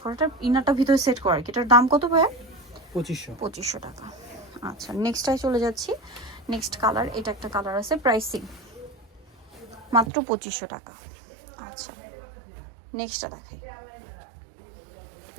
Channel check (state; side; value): drops out; left; at 10.1 s